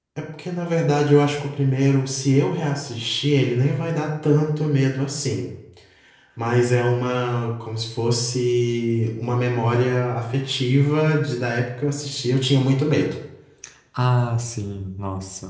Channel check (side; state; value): both; identical; correlation 1.00